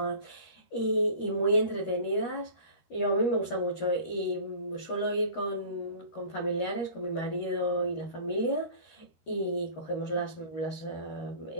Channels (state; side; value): late; right; 13 ms